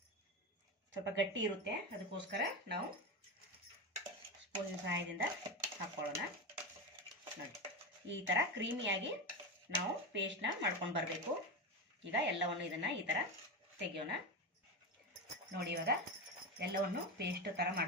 ಸ್ವಲ್ಪ ಗಟ್ಟಿ ಇರುತ್ತೆ, ಅದಕ್ಕೋಸ್ಕರ ನಾವು ಸ್ಪೂನಿನ ಸಹಾಯದಿಂದ ಹಾಕೊಳ್ಳೋಣ. ನೋಡಿ, ಈ ಥರ ಕ್ರೀಮಿಯಾಗಿ ನಾವು ಪೇಸ್ಟ್ನ ಮಾಡ್ಕೊಂಡು ಬರಬೇಕು. ಈಗ ಎಲ್ಲವನ್ನು ಇದನ್ನು ಈ ಥರ ತೆಗೆಯೋಣ. ನೋಡಿ, ಇವಾಗ ಎಲ್ಲವನ್ನು ಪೇಸ್ಟ್ ಥರ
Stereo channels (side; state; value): both; normal; correlation 0.17